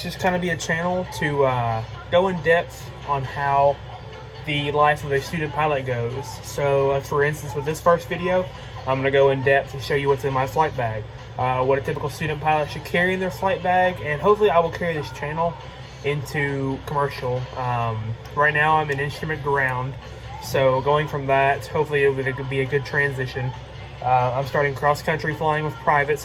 just kind of be a channel to go in depth on how the life of a student pilot goes. So, for instance, with this first video, I'm going to go in depth and show you what's in my flight bag, what a typical student pilot should carry in their flight bag, and hopefully I will carry this channel into commercial. Right now I'm in instrument ground, so going from that, hopefully it could be a good transition. I'm starting cross-country flying with private,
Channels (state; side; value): identical; both; correlation 1.00